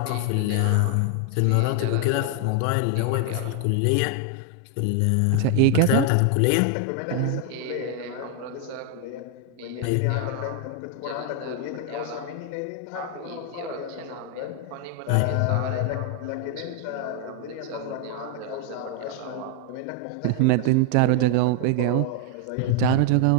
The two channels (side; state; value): both; different; correlation 0.00